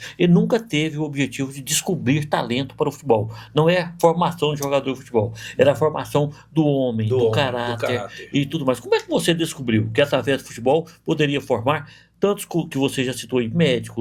ele nunca teve o objetivo de descobrir talento para o futebol. Não é a formação de jogador de futebol, era a formação do homem, do caráter e tudo mais. Como é que você descobriu que através do futebol poderia formar tantos que você já citou aí,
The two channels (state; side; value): identical; both; correlation 1.00